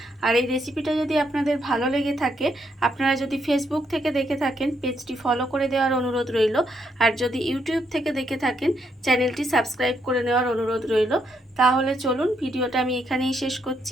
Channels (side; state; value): both; normal; correlation 0.76